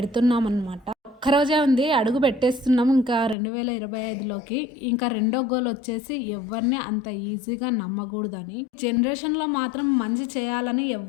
అనమాట. ఒక్కరోజే ఉంది, అడుగు పెట్టేస్తున్నాం ఇంకా 2025లోకి. ఇంకా రెండో గోల్ వచ్చేసి ఎవరిని అంత ఈజీగా నమ్మకూడదని. జనరేషన్లో మాత్రం మంచి చేయాలని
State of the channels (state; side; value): drops out; right; at 3.4 s